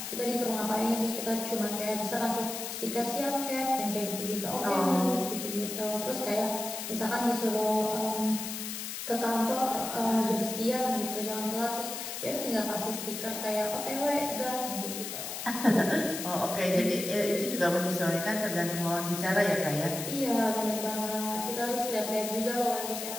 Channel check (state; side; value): noise; left; hiss, 6 dB below the sound